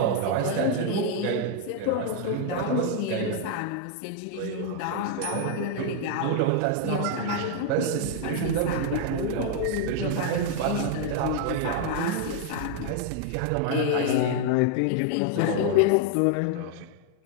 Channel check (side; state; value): both; different; correlation 0.00